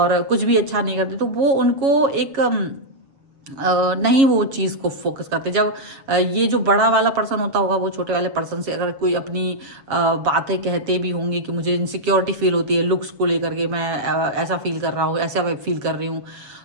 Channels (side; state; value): left; late; 7.1 ms